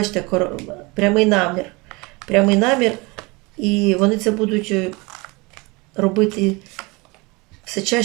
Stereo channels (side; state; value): left; quieter; 25.7 dB